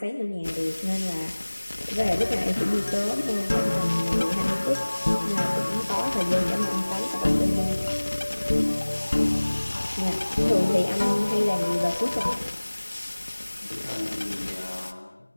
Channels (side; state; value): both; inverted; correlation -1.00